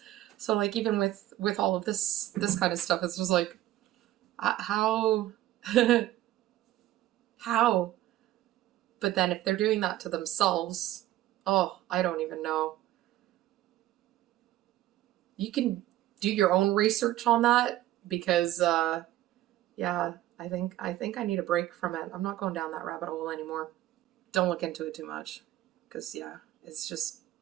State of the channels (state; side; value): quieter; left; 14.5 dB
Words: So, like, even with all of this kind of stuff, it's just like, how? How? But then if they're doing that to themselves, oh, I don't even know. You can do your own research on that, because, yeah, I think I need a break from it. I'm not going down that rabbit hole anymore. Don't look into it too much, because, yeah, it's just,